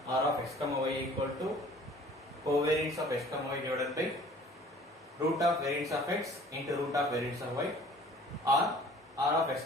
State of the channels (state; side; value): normal; both; correlation 0.51